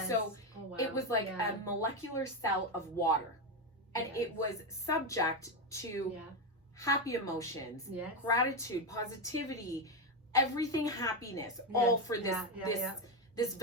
So oh, wow. it was like yeah. a molecular cell of water, and Yes. it was subject to yeah. happy emotions, Yes. gratitude, positivity, everything happiness, all for this this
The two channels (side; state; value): both; normal; correlation 0.10